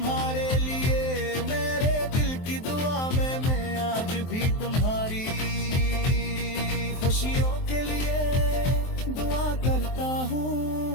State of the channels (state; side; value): late; right; 23 ms